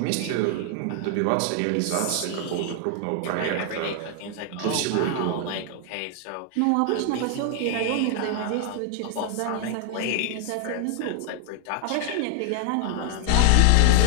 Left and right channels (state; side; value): different; both; correlation 0.00